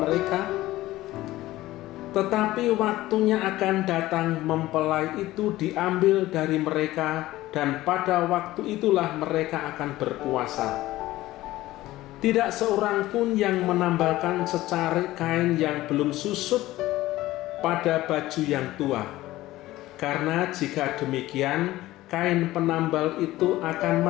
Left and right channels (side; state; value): right; quieter; 16.6 dB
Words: mereka? Tetapi waktunya akan datang mempelai itu diambil dari mereka, dan pada waktu itulah mereka akan berpuasa. Tidak seorang pun yang menambalkan secarik kain yang belum susut pada baju yang tua. Karena jika demikian, kain penambal itu akan